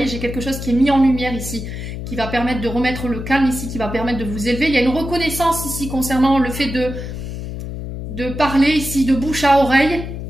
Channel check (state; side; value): noise; left; hum, 7 dB below the sound